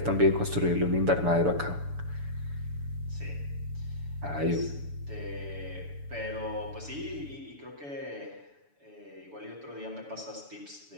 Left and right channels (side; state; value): left; late; 7.0 ms